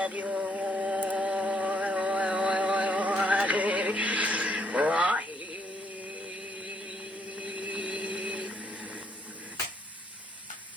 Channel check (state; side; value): normal; both; correlation 0.71